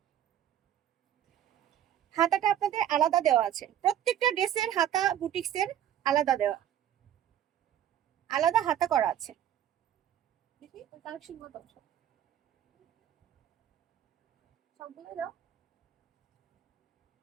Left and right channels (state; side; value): quieter; left; 10.7 dB